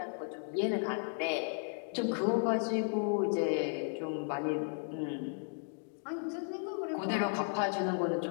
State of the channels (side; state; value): right; silent; 55 dB below the other